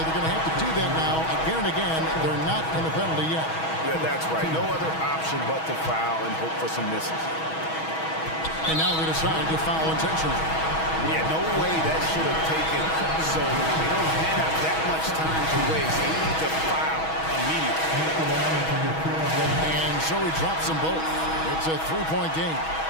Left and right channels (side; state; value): right; late; 6.2 ms